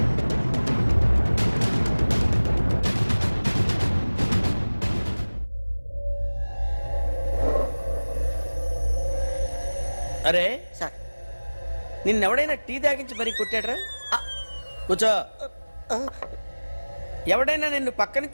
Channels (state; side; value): inverted; both; correlation -1.00